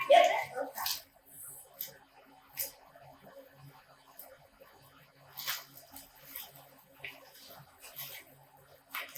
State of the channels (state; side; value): identical; both; correlation 1.00